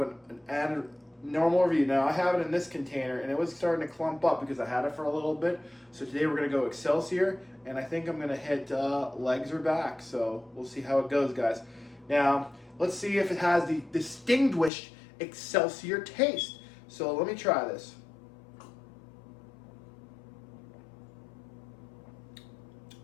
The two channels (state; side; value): drops out; right; at 14.7 s